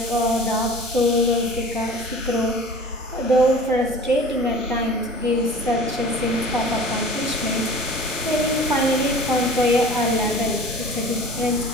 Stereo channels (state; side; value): normal; both; correlation 0.42